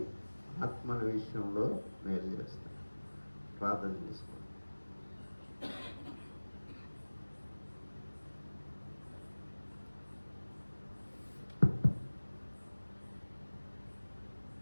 ఆత్మల విషయంలో మేలు చేస్తాడు. ప్రార్థన చేసుకోండి.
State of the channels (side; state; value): both; inverted; correlation -1.00